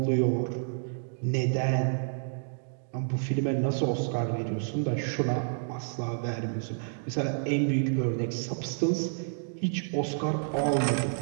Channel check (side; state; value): left; silent; digital silence